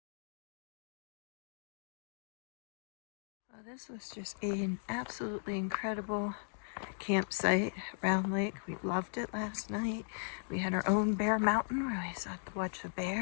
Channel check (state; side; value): silent; right; digital silence